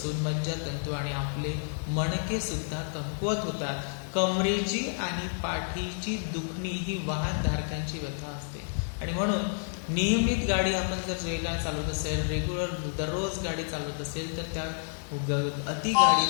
मज्जातंतू आणि आपले मणके सुद्धा कमकुवत होतात। कमरेची आणि पाठीची दुखणी ही वाहनधारकांची व्यथा असते आणि म्हणून नियमित गाडी आपण जर वेगाने चालवत असेल, रेग्युलर दररोज गाडी चालवत असेल तर त्या अति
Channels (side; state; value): right; silent; digital silence